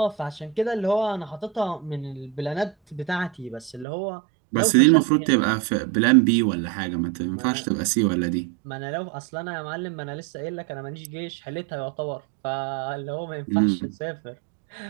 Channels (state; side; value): drops out; left; at 3.9 s